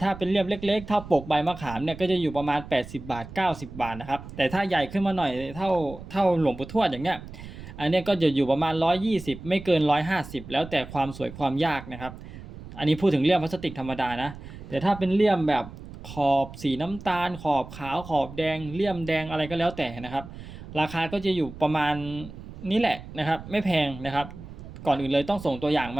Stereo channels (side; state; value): right; noise; rumble, 14 dB below the sound